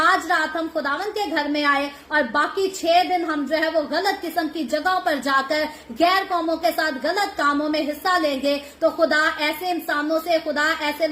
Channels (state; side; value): identical; both; correlation 1.00